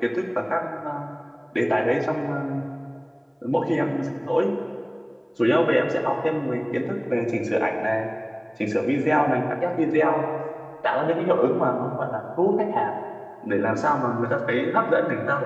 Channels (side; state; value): both; identical; correlation 1.00